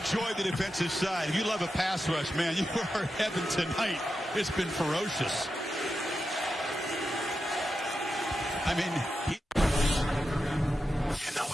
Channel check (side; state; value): both; normal; correlation 0.89